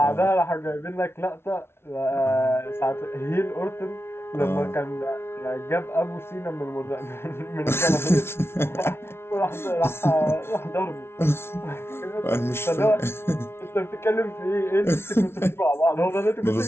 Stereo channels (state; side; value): late; right; 0.12 ms